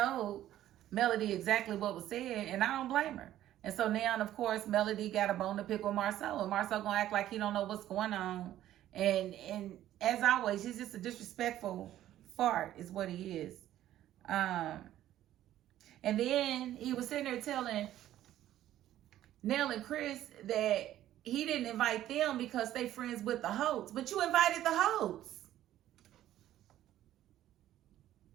Melody exactly what was said, and I don't blame her. And so now, of course, Melody got a bone to pick with Marceau, and Marceau gonna act like he don't know what's going on. And as always, he's just a disrespectful fart is what he is. And then he was sitting there telling Nell and Chris that he didn't invite them because they friends with the Holtz. But you invited the Holtz.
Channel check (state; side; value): quieter; left; 12.9 dB